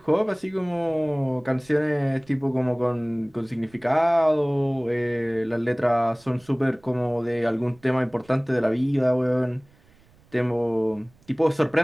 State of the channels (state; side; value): noise; right; rumble, 29 dB below the sound